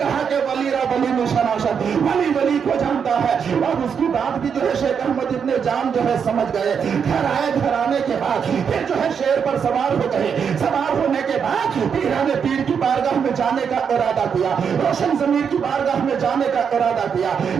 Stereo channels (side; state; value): left; quieter; 6.9 dB